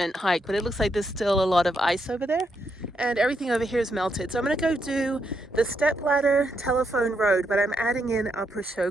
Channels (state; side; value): normal; both; correlation 0.80